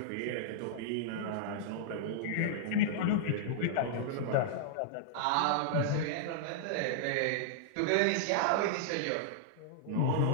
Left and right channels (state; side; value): different; both; correlation -0.01